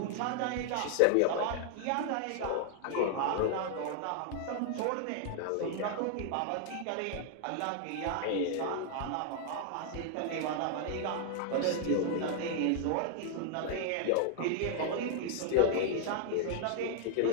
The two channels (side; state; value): both; different; correlation -0.01